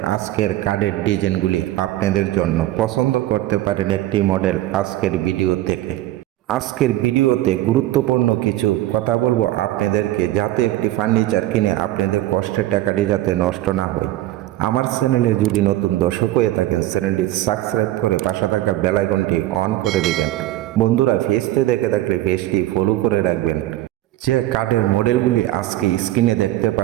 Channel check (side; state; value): left; quieter; 15.2 dB